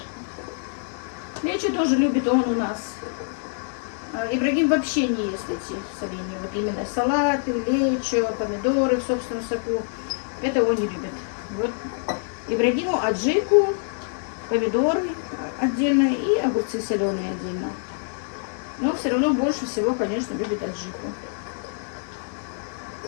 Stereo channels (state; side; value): silent; right; 59 dB below the other